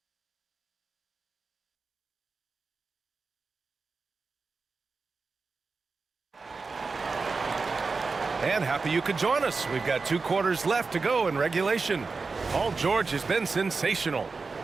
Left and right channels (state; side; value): quieter; left; 4.3 dB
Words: And happy you could join us. We've got 2 quarters left to go in regulation. Paul George has been sensational.